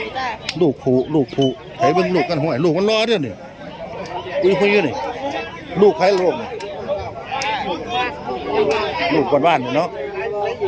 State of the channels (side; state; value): both; identical; correlation 1.00